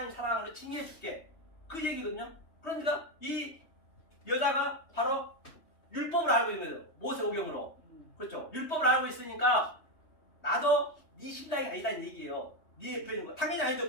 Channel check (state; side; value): late; right; 3.2 ms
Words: 사랑으로 칭의해 줄게. 그 얘기거든요. 그러니까 이 여자가 바로 율법을 알고 있는 거예요. 모세오경으로. 그렇죠. 율법을 알고 있으니까 나도 네 신랑이 아니다는 얘기예요. 네 옆에 있는 거. 당연히 아니죠.